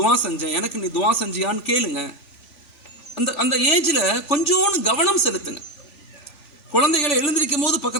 செஞ்சேன், எனக்கு நீ துவா செஞ்சியான்னு கேளுங்க. அந்த ஏஜில் கொஞ்சோன்னு கவனம் செலுத்துங்க. குழந்தைகளை எழுந்திருக்கும் போது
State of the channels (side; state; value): right; late; 3.5 ms